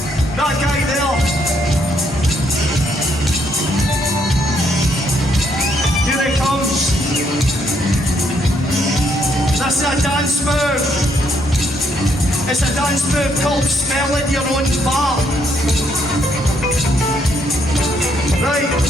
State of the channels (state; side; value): normal; both; correlation 0.72